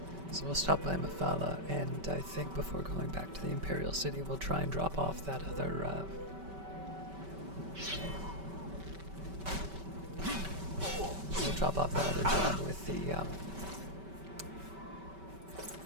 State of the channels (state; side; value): late; left; 5.2 ms